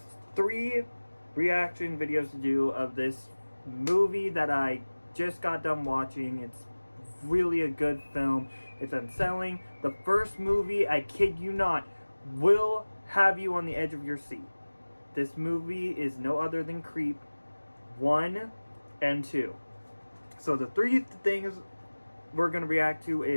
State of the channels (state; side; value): inverted; both; correlation -1.00